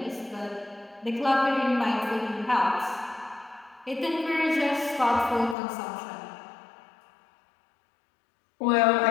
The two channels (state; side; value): drops out; right; at 5.6 s